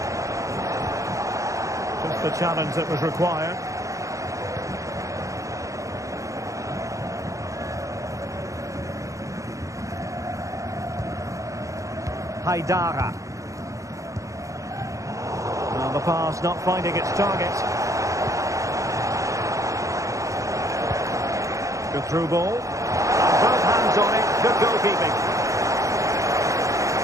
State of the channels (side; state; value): left; late; 0.15 ms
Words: Just the challenge that was required. Haidara. Well, the pass not finding its target. Good through ball. And both hands on it. Good goalkeeping.